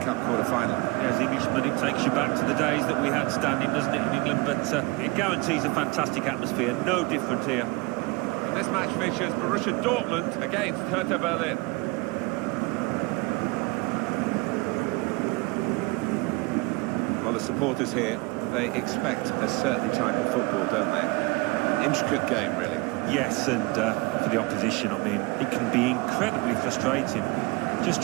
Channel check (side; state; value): left; quieter; 25.4 dB